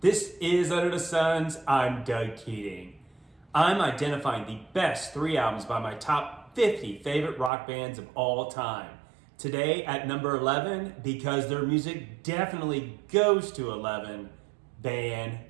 This is Under the Suns. I'm Doug Keating. I'm identifying the best 3 albums by my top 50 favorite rock bands of all time. Today at number 11, because their music definitely goes to 11, Van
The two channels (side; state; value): left; drops out; at 7.5 s